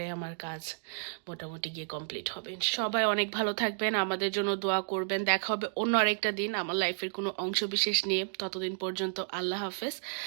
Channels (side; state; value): left; silent; digital silence